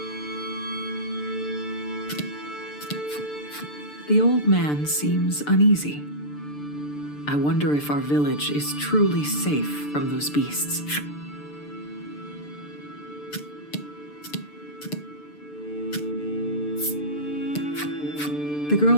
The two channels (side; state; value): right; late; 6.8 ms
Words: The old man seems uneasy. I wonder if our village is truly safe from those beasts. The